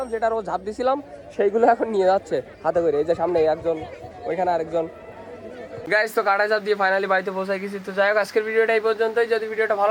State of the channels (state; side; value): identical; both; correlation 1.00